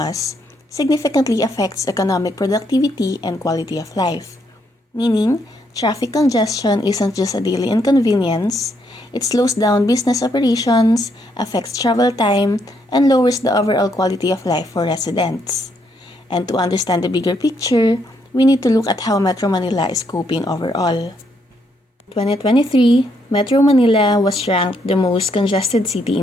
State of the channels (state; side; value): normal; both; correlation 0.74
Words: significantly affects economic productivity and quality of life. Meaning, traffic congestion isn't just a daily inconvenience, it slows down business operations, affects travel time, and lowers the overall quality of life for residents. And to understand the bigger picture, we need to look at how Metro Manila is coping overall. 2023, Metro Manila was ranked the most congested city